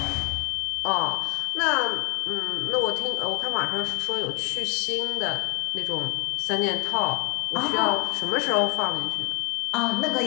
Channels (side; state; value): right; quieter; 33.7 dB